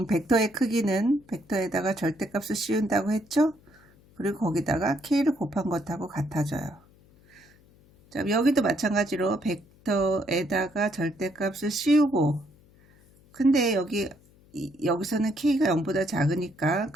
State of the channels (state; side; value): noise; left; hum, 28 dB below the sound